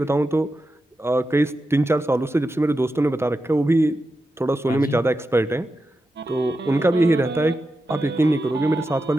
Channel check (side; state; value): both; normal; correlation 0.90